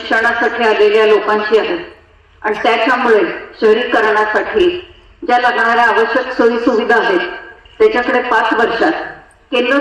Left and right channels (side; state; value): both; identical; correlation 1.00